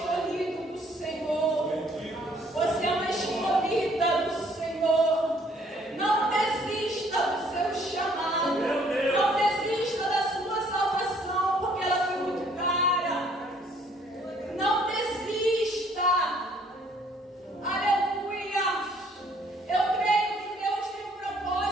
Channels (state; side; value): normal; both; correlation 0.62